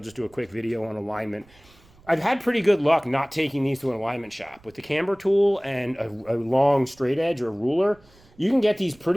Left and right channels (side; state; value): right; noise; rumble, 28 dB below the sound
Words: just do a quick video on alignment. I've had pretty good luck not taking these to an alignment shop. With the camber tool and a long straight edge or ruler, you can get these